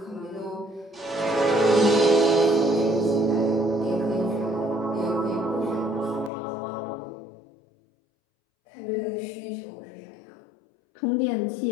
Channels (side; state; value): right; drops out; at 6.3 s